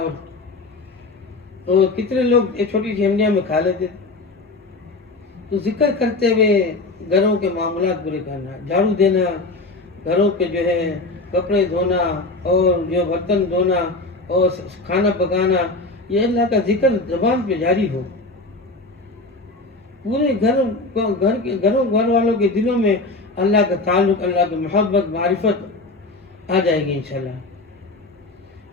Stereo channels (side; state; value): right; quieter; 3.2 dB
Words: اور کتنے لوگ یہ چھوٹی سی ہنڈیاں میں کھا لیتے تھے۔ تو ذکر کرتے ہوئے گھروں کے معاملات پورے کرنا، جھاڑو دینا، گھروں کے جو ہے کپڑے دھونا اور جو برتن دھونا اور کھانا پکانا، یہ اللہ کا ذکر زبان پہ جاری ہو، پورے گھر والوں کے دلوں میں اللہ کا تعلق، اللہ کی محبت، معرفت آ جائے گی انشاءاللہ،